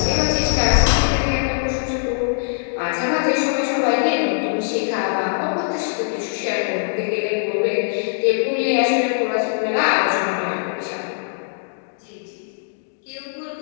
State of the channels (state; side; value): silent; right; digital silence